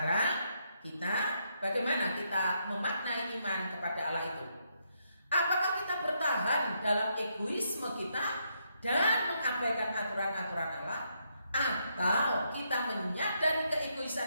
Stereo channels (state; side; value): inverted; both; correlation -0.77